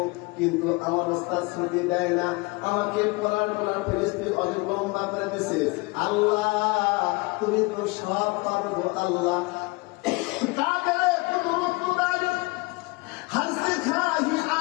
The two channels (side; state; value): right; quieter; 25.6 dB